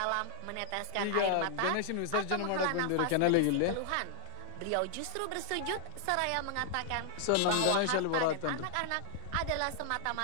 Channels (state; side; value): different; both; correlation -0.01